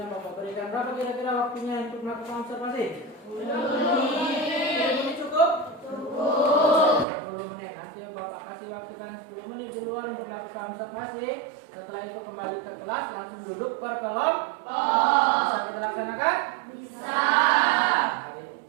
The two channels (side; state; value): left; drops out; at 7.1 s